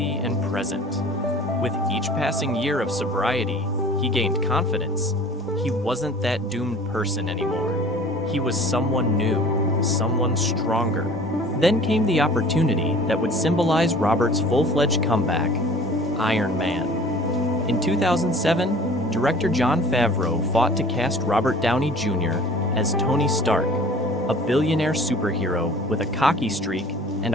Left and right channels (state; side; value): normal; both; correlation 0.46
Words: and present. With each passing year of sobriety, he gained confidence. He wasn't that doomed person anymore. He was someone new, someone stronger. Then came the opportunity that would symbolize Robert's full-fledged comeback, Iron Man. In 2007, director Jon Favreau fought to cast Robert Downey Jr. as Tony Stark, a billionaire superhero with a cocky streak and